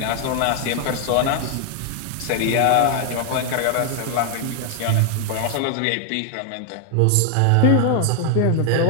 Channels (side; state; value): both; different; correlation 0.00